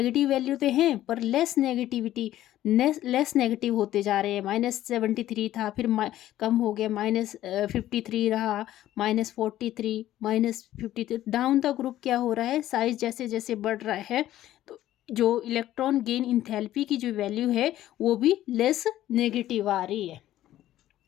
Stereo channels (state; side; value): quieter; right; 13.6 dB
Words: वैल्यू तो हैं पर लेस नेगेटिव होते जा रहे हैं। -73 था, फिर कम हो गया, -53 रहा, -43, -53, डाउन द ग्रुप क्या हो रहा है, साइज जैसे जैसे बढ़ रहा है तो जो इलेक्ट्रॉन गेन इंथैल्पी की जो वैल्यू है वो भी लेस नेगेटिव आ रही है।